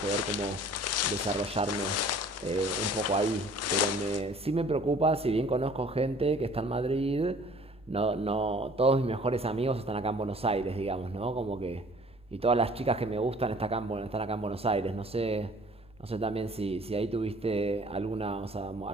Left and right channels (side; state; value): both; normal; correlation 0.52